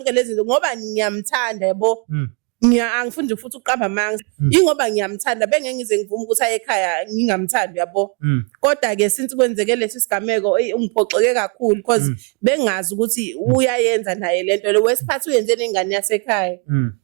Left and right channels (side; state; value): left; quieter; 34.0 dB